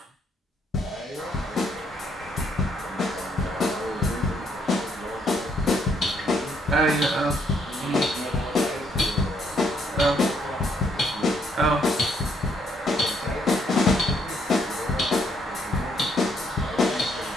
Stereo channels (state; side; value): normal; both; correlation 0.71